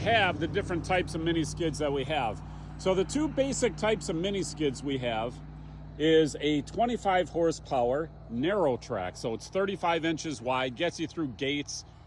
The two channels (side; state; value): both; identical; correlation 1.00